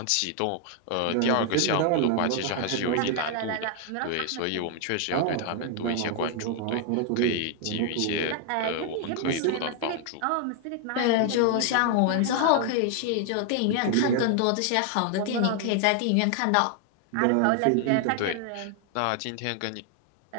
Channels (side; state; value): both; different; correlation 0.00